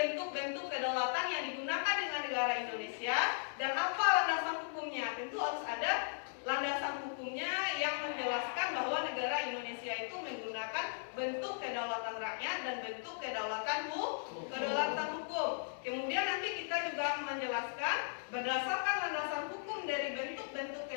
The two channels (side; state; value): right; silent; digital silence